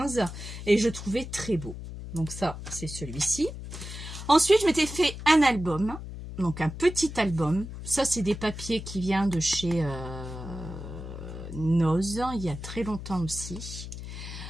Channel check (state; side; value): noise; left; hum, 10 dB below the sound